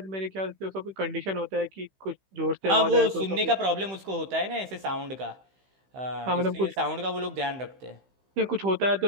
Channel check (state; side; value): late; left; 15 ms